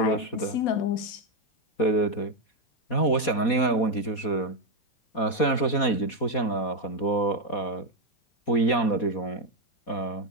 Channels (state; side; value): late; right; 4.2 ms